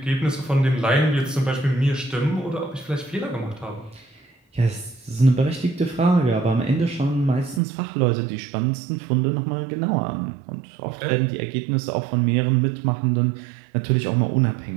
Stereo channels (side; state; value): left; drops out; at 7.6 s